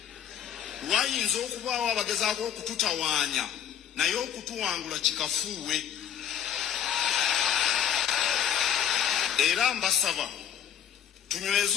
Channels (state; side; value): quieter; right; 9.3 dB